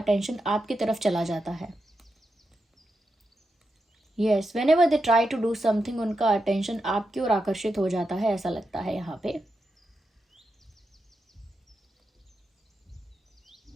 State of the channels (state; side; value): normal; both; correlation 0.87